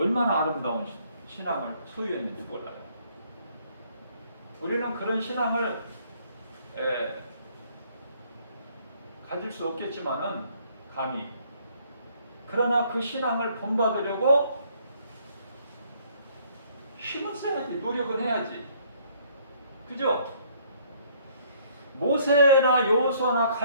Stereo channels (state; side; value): inverted; both; correlation -0.63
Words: 아름다운 신앙을 소유했는지 몰라요. 우리는 그런 신앙을 가질 수 없겠지만은 감히, 그러나 그 신앙을 본받으려고 힘을 써야지, 노력은 해야지. 그죠? 모세나 여호수아나